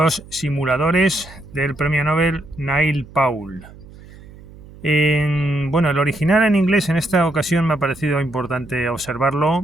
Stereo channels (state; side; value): noise; right; hum, 20 dB below the sound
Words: simuladores del premio Nobel Neil Paul. Bueno, el original en inglés en esta ocasión me ha parecido importante